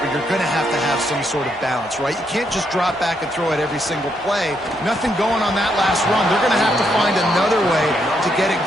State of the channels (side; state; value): both; normal; correlation 0.77